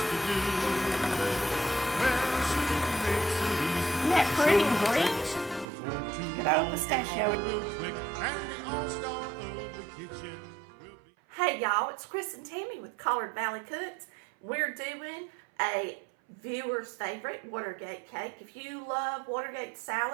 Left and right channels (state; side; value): drops out; left; at 5.7 s